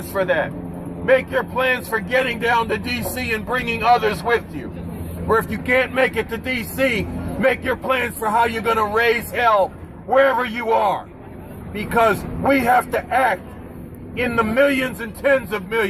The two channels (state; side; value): identical; both; correlation 1.00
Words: for that. Make your plans for getting down to D.C. and bringing others with you. Or if you can't make it to D.C., make your plans for how you're going to raise hell wherever you are. Because we have to act in the millions and tens of